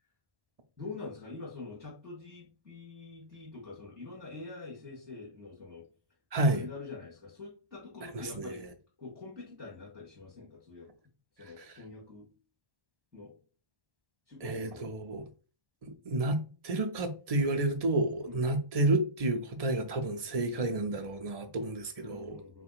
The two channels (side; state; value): left; late; 1.7 ms